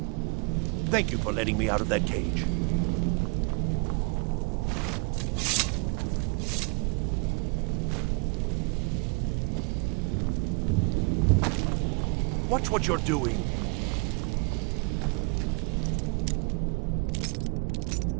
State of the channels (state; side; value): quieter; left; 32.0 dB